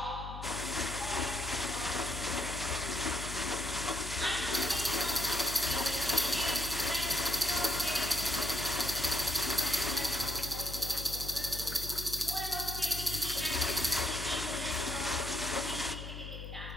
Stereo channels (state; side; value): noise; left; hum, 9 dB below the sound